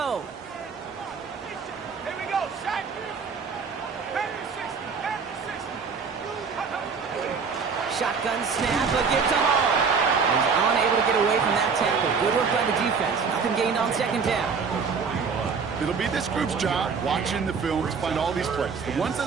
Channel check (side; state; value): left; quieter; 5.5 dB